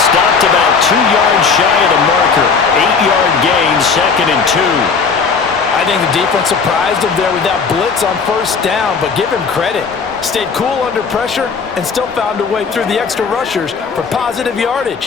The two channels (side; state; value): right; quieter; 5.3 dB